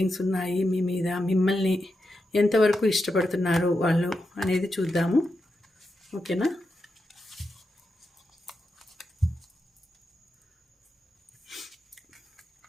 ఉన్నాయి మీ మీద? మిమ్మల్ని ఎంతవరకు ఇష్టపడుతున్నారు వాళ్ళు అనేది చూద్దాము. ఓకేనా?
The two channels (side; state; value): both; normal; correlation 0.87